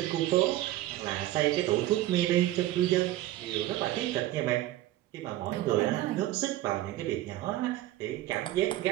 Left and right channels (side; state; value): left; quieter; 15.0 dB